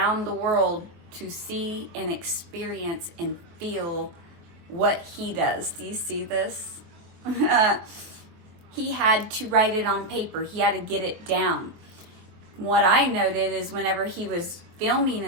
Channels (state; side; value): late; left; 24 ms